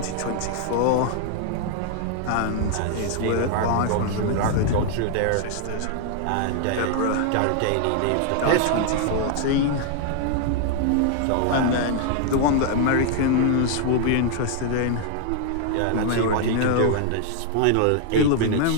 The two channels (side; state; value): both; different; correlation 0.00